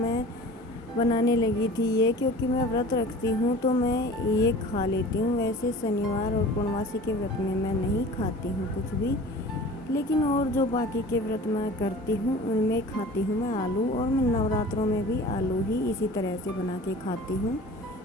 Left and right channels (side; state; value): both; normal; correlation 0.41